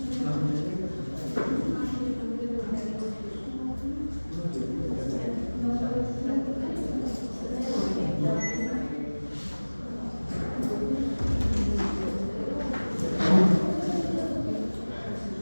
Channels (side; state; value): both; inverted; correlation -1.00